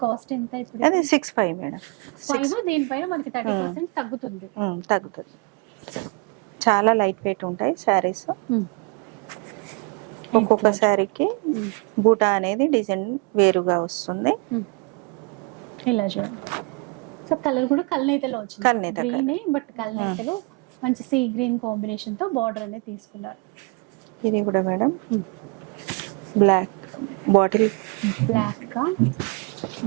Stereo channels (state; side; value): quieter; left; 30.0 dB